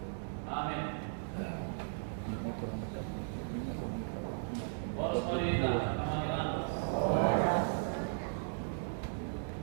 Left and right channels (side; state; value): left; silent; digital silence